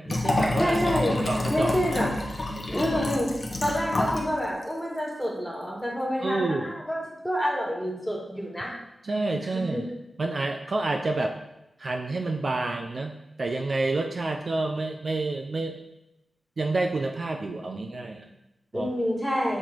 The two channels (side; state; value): both; normal; correlation 0.93